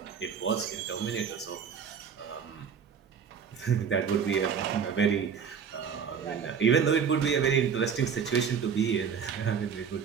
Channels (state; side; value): quieter; left; 6.9 dB